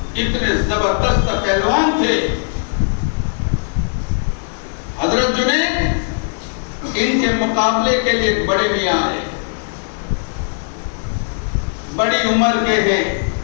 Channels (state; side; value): silent; right; digital silence